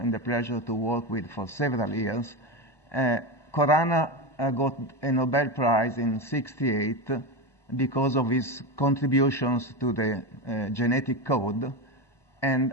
and the pleasure to work with for several years. Khorana got a Nobel Prize in '68 because of his contributions to the genetic code,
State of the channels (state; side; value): late; right; 1.2 ms